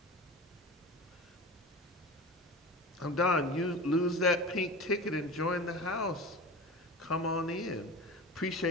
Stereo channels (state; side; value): normal; both; correlation 0.32